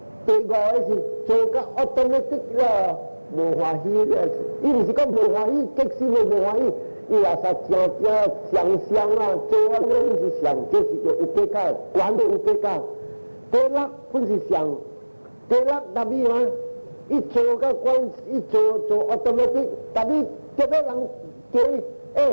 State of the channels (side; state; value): both; inverted; correlation -1.00